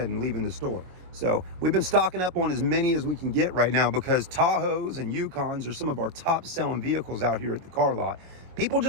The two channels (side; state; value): left; late; 22 ms